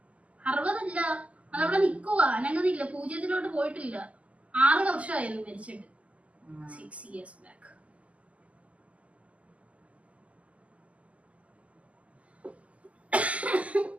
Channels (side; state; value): left; late; 0.068 ms